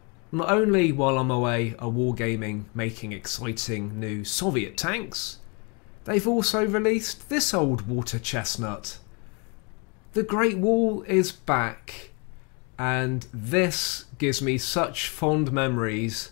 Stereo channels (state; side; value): quieter; right; 32.6 dB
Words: Not only while I'm away are wargaming making exciting new Soviet tanks, they've also released this old water chestnut. The Great Wall is back, and this gives me such fond memories